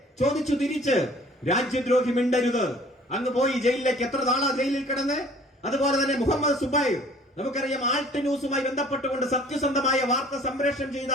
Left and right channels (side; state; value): both; normal; correlation 0.52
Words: ചോദിച്ചു തിരിച്ച്, രാജ്യദ്രോഹി മിണ്ടരുത്. അങ്ങ് പോയി ജയിലിലേക്ക്. എത്ര നാളാ ജയിലിൽ കിടന്ന്? അതുപോലെ തന്നെ മുഹമ്മദ് സുബൈർ, നമുക്കറിയാം, ആൾട്ട് ന്യൂസുമായി ബന്ധപ്പെട്ടുകൊണ്ട് സത്യസന്ധമായ വാർത്ത സംപ്രേഷണം ചെയ്ത